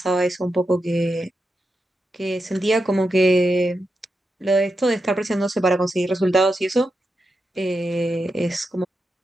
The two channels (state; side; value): normal; both; correlation 0.87